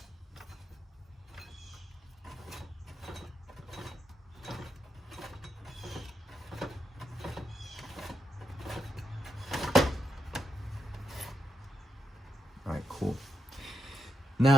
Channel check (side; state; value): both; normal; correlation 0.83